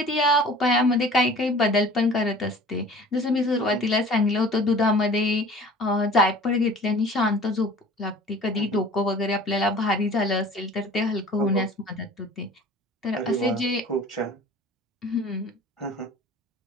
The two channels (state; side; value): normal; both; correlation 0.45